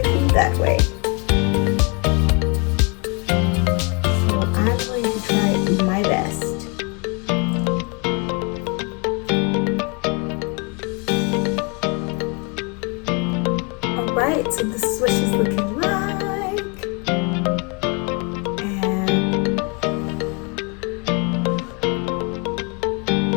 food that way. So I'm going to try my best. Alright, so this is what she's looking like.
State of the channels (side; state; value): right; quieter; 32.0 dB